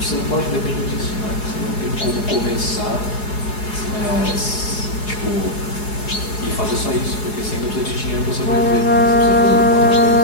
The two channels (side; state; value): right; late; 4.8 ms